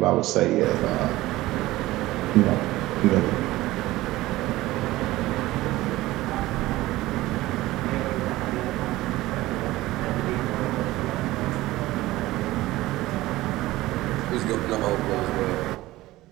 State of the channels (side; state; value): left; quieter; 17.6 dB